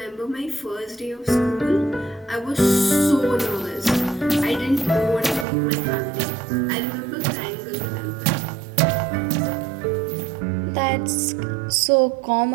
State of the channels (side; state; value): left; drops out; at 5.5 s